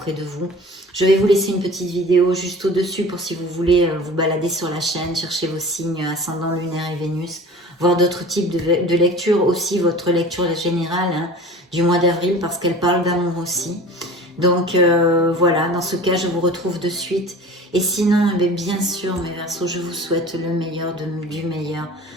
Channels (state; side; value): normal; both; correlation 0.41